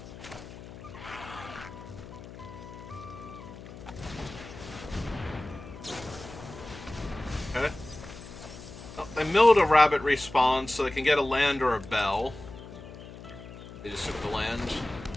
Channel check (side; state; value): left; noise; hum, 14 dB below the sound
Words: Okay. Oh, they milled a Rabbit Response so they can get a land or a bell. They just took the land.